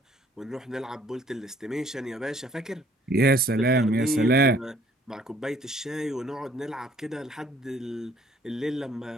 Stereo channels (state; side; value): normal; both; correlation 0.60